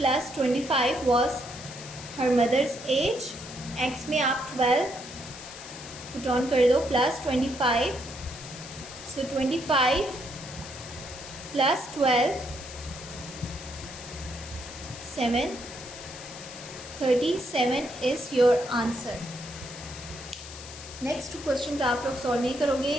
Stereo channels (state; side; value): noise; left; hiss, 13 dB below the sound